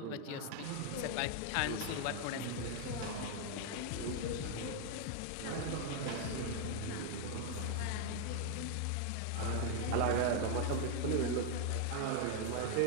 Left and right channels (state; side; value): different; both; correlation 0.00